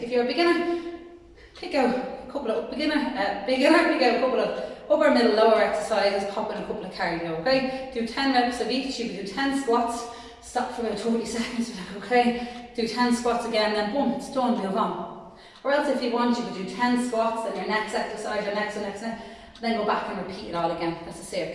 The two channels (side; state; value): both; identical; correlation 1.00